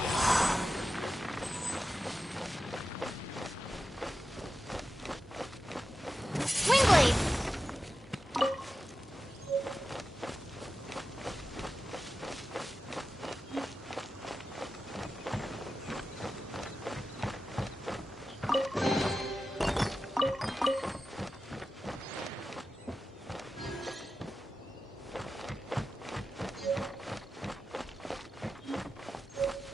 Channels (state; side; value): normal; both; correlation 0.92